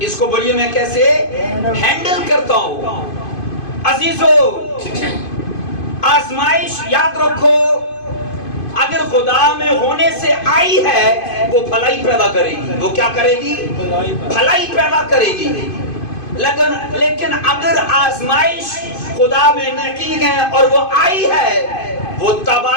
اس کو بولیے میں کیسے ہینڈل کرتا ہوں. عزیزو آزمائش یاد رکھو اگر خدا میں ہونے سے آئی ہے وہ بھلائی پیدا کرے گی. وہ کیا کرے گی؟ بھلائی پیدا کرے گی. لیکن اگر آزمائش خدا میں نہیں ہے اور وہ آئی ہے وہ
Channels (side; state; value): right; late; 2.5 ms